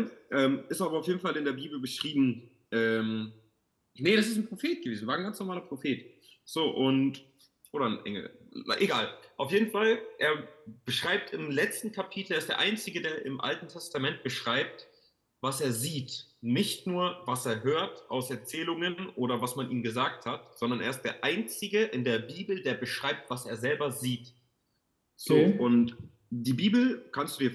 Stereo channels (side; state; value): both; identical; correlation 1.00